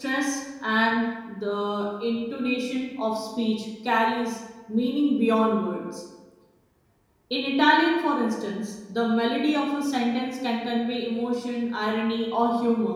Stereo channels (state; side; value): identical; both; correlation 1.00